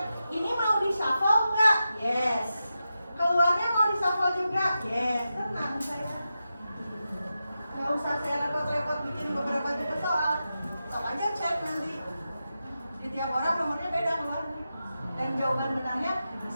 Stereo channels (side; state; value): both; inverted; correlation -0.90